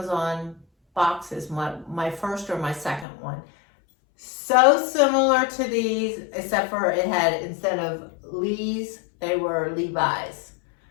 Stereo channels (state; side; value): drops out; right; at 3.1 s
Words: boxes, my first or my second one. So similar to these, except for it had, instead of Lee's, they were Levi's.